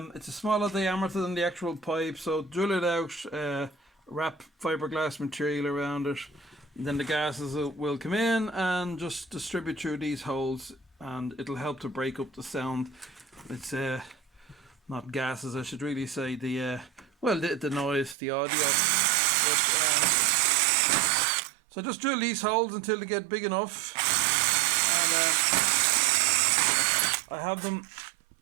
It's a smaller diameter than the actual pipe, so drill it out, wrap fiberglass material around it, and then the gases will come in and just distribute through these holes, and it'll help to break up the sound. It's not gases, I should really say, the noise, the audio. So just drill these holes until they get big enough, and I have them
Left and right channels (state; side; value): drops out; left; at 18.2 s